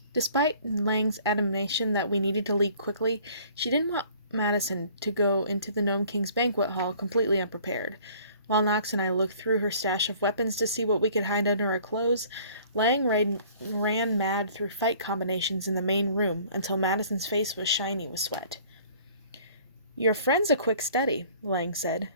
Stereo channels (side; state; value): both; inverted; correlation -0.53